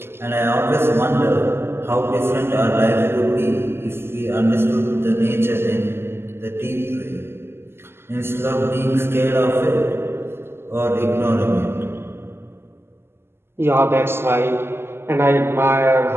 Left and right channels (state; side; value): late; left; 0.12 ms